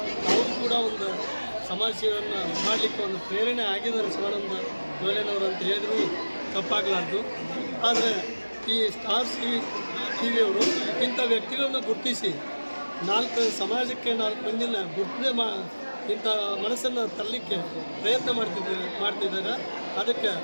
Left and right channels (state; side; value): inverted; both; correlation -1.00